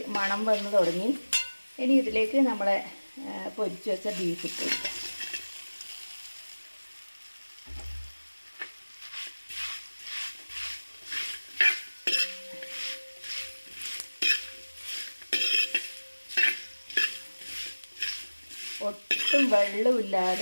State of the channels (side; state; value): both; inverted; correlation -1.00